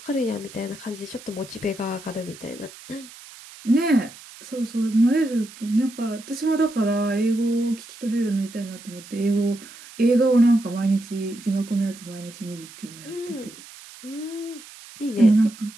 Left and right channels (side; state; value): right; noise; hiss, 18 dB below the sound